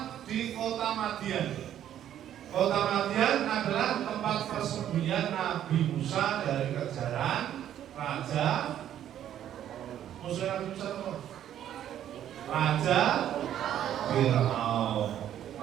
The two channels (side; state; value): left; quieter; 10.9 dB